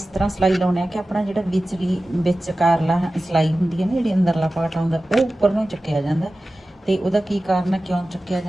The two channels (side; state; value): both; normal; correlation 0.95